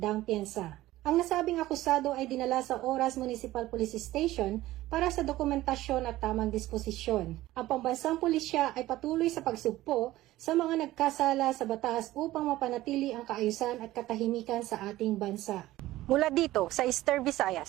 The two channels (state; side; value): quieter; left; 16.3 dB